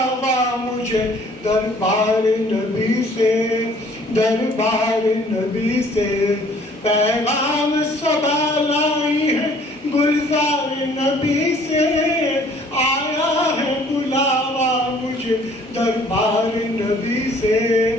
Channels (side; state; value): both; normal; correlation 0.57